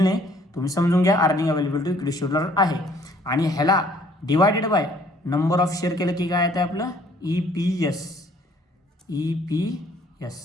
नाही, तुम्ही समजून घ्या. Earning available to equity shareholder आहे, आणि ह्याला divided by number of share केलं की काय येतं आपलं EPS.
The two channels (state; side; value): normal; both; correlation 0.60